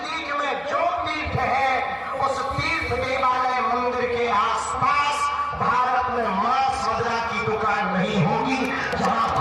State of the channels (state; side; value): identical; both; correlation 1.00